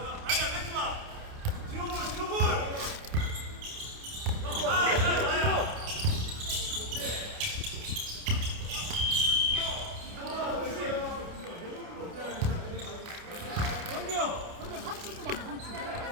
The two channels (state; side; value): late; left; 29 ms